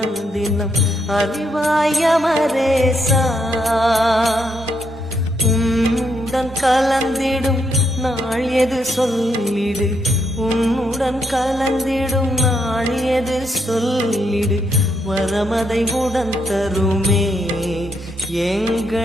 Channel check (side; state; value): both; normal; correlation 0.77